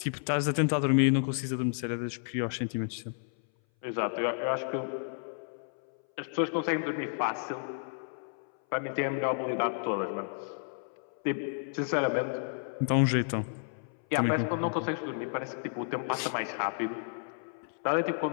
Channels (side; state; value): right; silent; 57 dB below the other